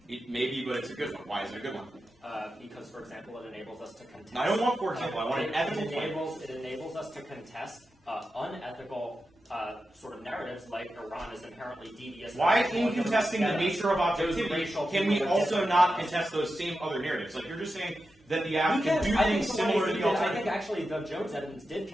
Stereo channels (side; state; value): both; normal; correlation 0.90